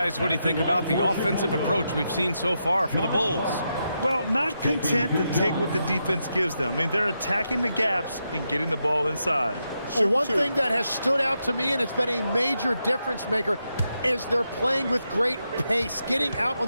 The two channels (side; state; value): both; inverted; correlation -0.84